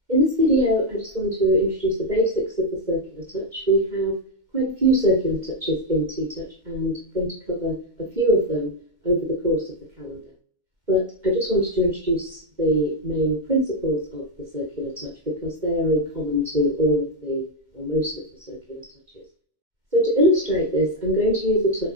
this video, I just want to introduce the basics of the circular touch. We have quite a few circular touches in TTouch, and I'm going to cover a few of them over the course of the calendar. But I just wanted to introduce the main principles of the circular touch because they are in common to all of the, or most of the circular touches. So to illustrate this, I'm going to use a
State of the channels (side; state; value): left; late; 2.1 ms